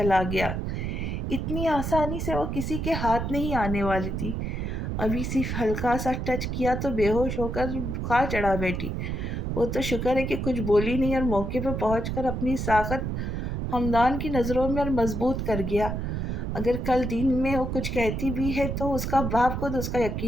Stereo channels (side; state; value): right; noise; rumble, 3 dB below the sound